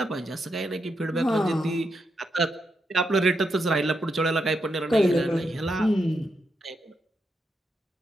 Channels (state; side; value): normal; both; correlation 0.83